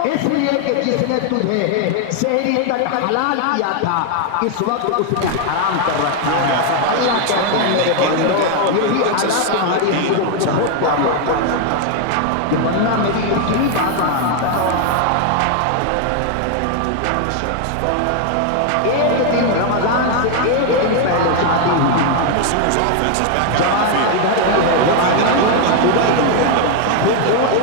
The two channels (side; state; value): both; different; correlation 0.00